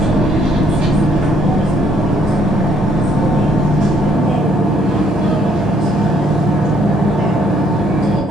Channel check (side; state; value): both; normal; correlation 0.67